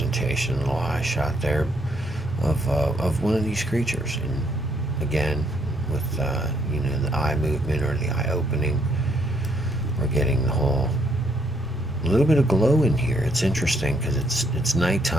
a little eye shot there of one of these creatures. And again, with the eye movement or the eye opening, we're getting the whole A little bit of glow in here. It's interesting because it's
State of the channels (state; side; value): normal; both; correlation 0.71